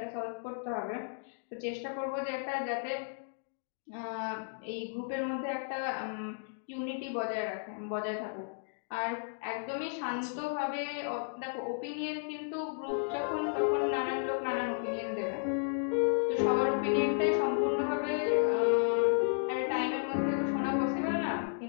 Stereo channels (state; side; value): silent; right; digital silence